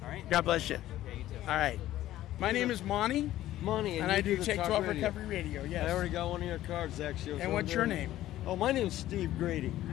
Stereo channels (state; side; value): quieter; right; 14.1 dB